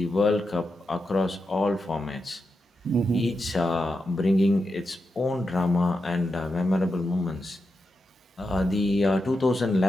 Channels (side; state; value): both; normal; correlation 0.88